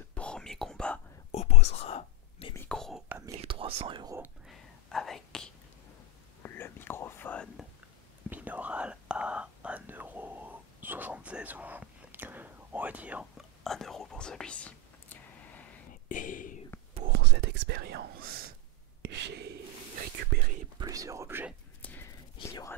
premier combat opposera mes micros à 1300 € avec le microphone binaural à 1,76 € ou on va dire 1 € pour celui-ci. Et pour cette expérience, j'ai récupéré plusieurs objets. Il y aura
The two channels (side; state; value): both; normal; correlation 0.05